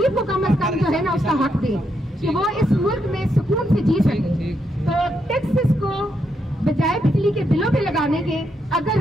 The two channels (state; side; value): normal; both; correlation 0.80